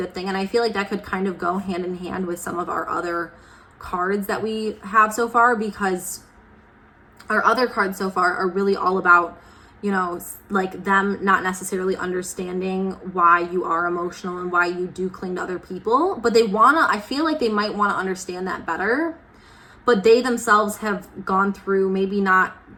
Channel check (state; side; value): identical; both; correlation 1.00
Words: thing. And I feel like that could kind of go hand in hand with some of our other cards that we have so far, because our other cards so far are really all about, you know, like them not necessarily understanding why you are emotional and why you do cling to other people, but I feel like they might want to understand that better, but they themselves have gone through maybe not